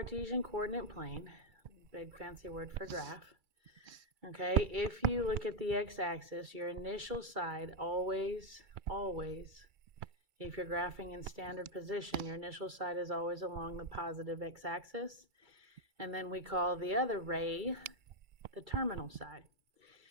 coordinate plane, big fancy word for graph, okay, if you look at the x-axis, your initial side always, if you're graphing in standard position, your initial side is always along the positive x-axis, and then we call the other ray the terminal side.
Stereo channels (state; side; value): late; left; 2.3 ms